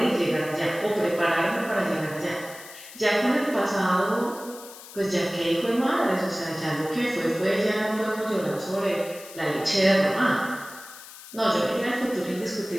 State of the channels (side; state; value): left; noise; hiss, 16 dB below the sound